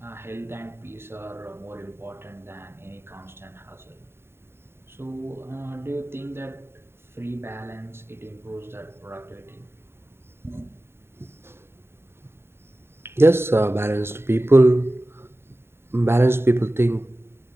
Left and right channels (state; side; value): late; left; 0.11 ms